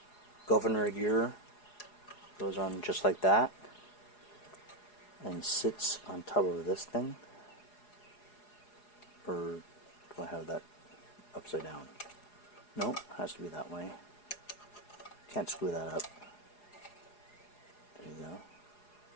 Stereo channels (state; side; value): late; right; 4.8 ms